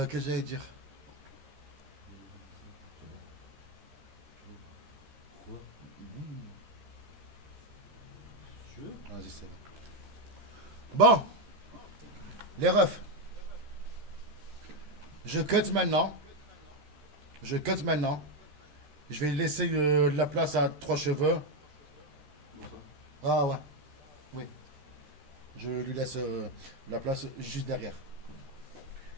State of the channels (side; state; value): left; late; 13 ms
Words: que j'allais dire? Vas-y, c'est bon. Bon, les refs. Je cut maintenant. Je cut maintenant. Je vais laisser la place à 3 cheveux. Ah ouais. Oui. Je lui laisse la place juste derrière.